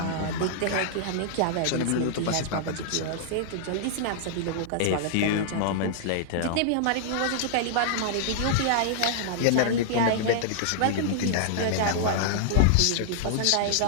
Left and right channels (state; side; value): different; both; correlation -0.01